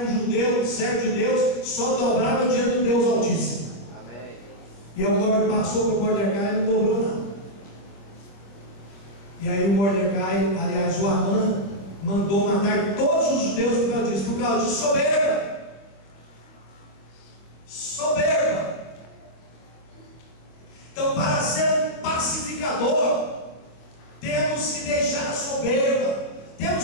um judeu, servo de Deus, só dobrava diante do Deus Altíssimo. Amém. E o Mordecai passou para o Mordecai e não dobrou nada. E aí o Mordecai, aliás, o Amã, mandou matar todos os judeus por causa disso, soberba. Soberba. Então, para ser um pacificador, temos que deixar a soberba.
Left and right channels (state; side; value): late; right; 25 ms